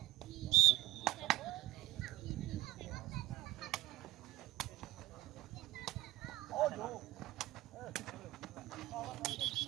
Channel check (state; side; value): quieter; left; 16.0 dB